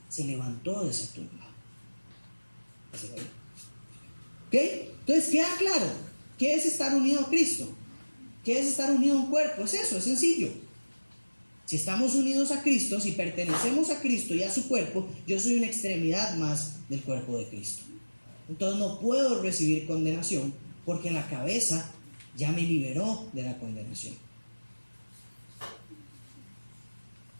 se levantó de esa tumba. ¿Ok? Entonces queda claro, ¿qué es estar unido a Cristo? ¿Qué es estar unido a un cuerpo? Es eso, es sencillo. Si estamos unidos a Cristo, si pertenecemos a Cristo y a su cuerpo, yo soy una extremidad más del cuerpo de Cristo. Entonces no puedo recibir condenación porque la cabeza ya me liberó de la condenación.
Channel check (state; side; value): inverted; both; correlation -1.00